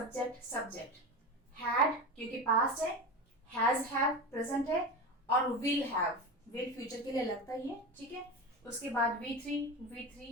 subject, had क्योंकि पास्ट है, हैज हैव प्रेजेंट है, और विल हैव विल फ्यूचर के लिए लगता ही है, ठीक है। उसके बाद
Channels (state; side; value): normal; both; correlation 0.24